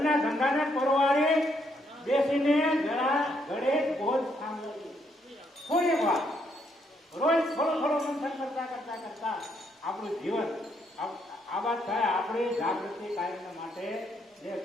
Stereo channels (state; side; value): normal; both; correlation 0.74